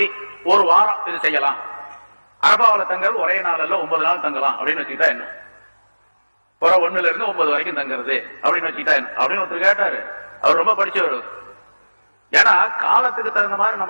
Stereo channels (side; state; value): both; inverted; correlation -1.00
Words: ஒரு வாரம் இது செய்யலாம், அரபாவில தங்குறது ஒரே நாள்ல 9 நாள் தங்கலாம் அப்படின்னு வச்சுக்கிட்டா என்ன, 1 இருந்து 9 வரைக்கும் தங்குறது அப்படின்னு வச்சுக்கிட்டா என்ன அப்படின்னு ஒருத்தர் கேட்டாரு. அவர் ரொம்ப படிச்சவர். ஏன்னா காலத்துக்கு தகுந்த மாதிரி